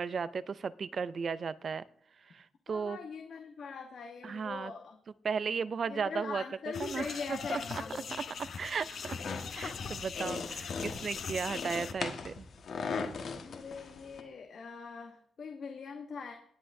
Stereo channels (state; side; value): normal; both; correlation 0.81